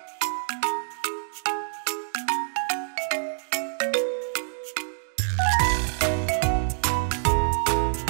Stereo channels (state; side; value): silent; left; digital silence